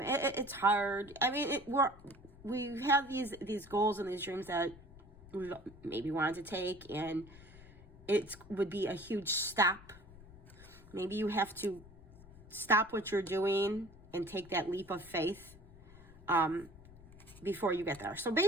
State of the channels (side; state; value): left; noise; rumble, 20 dB below the sound